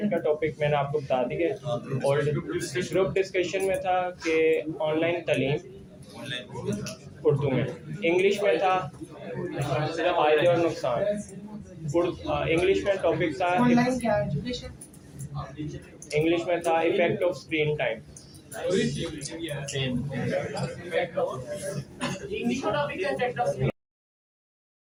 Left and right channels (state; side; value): identical; both; correlation 1.00